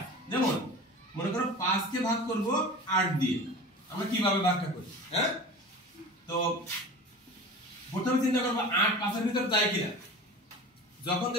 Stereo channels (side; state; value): both; normal; correlation 0.36